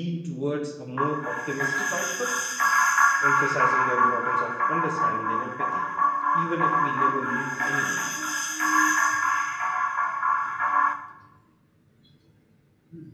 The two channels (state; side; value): identical; both; correlation 1.00